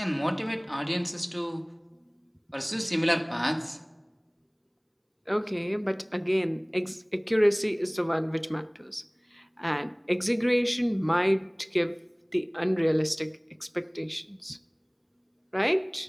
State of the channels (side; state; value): both; identical; correlation 1.00